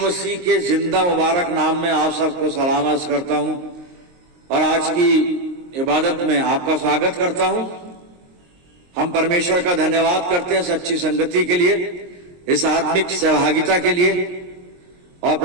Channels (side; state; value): left; late; 23 ms